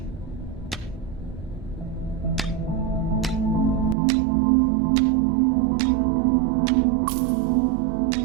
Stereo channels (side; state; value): left; drops out; at 4.0 s